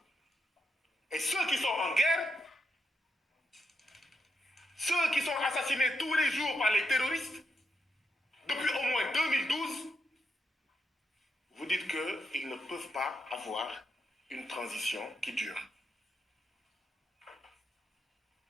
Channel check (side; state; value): both; normal; correlation 0.82